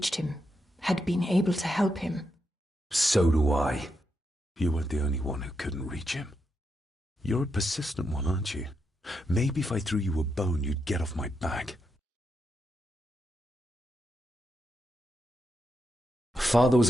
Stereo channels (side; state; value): both; normal; correlation 0.84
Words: him, had been able to help him. So do I. You weren't the only one who couldn't reach him. You're a persistent one, aren't you? Maybe if I threw you a bone, you'd get off my back. Father was